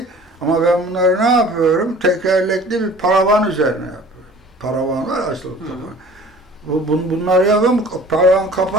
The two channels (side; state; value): both; normal; correlation 0.47